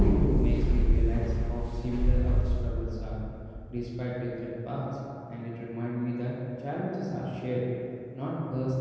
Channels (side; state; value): both; identical; correlation 1.00